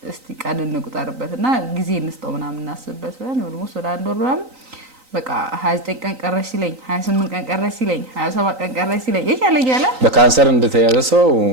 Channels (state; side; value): late; left; 3.9 ms